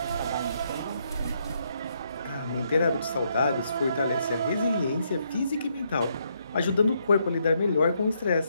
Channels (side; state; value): both; inverted; correlation -0.75